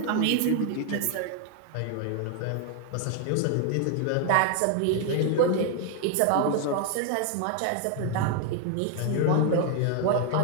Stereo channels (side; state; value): both; different; correlation 0.00